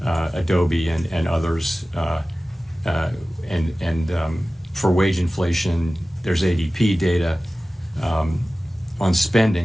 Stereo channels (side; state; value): both; normal; correlation 0.96